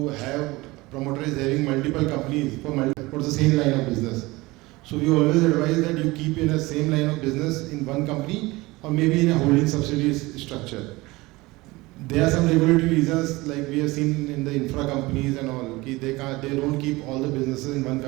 have promoters having multiple companies for the same line of business. So we always advise that you keep in the same line of business in one company or maybe in a holding subsidiary structure. There are some regulatory reasons, like we have seen in the infra companies and all, they don't keep all the businesses in one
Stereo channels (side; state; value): left; quieter; 21.4 dB